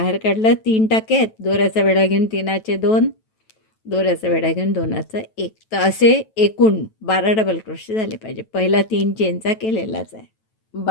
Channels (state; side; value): late; right; 9.1 ms